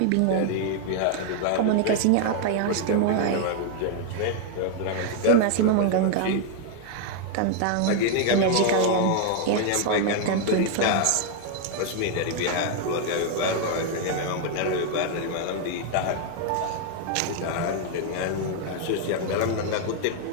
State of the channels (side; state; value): both; different; correlation 0.00